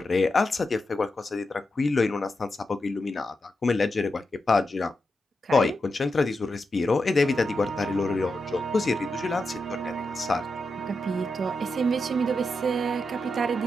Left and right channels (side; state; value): both; normal; correlation 0.87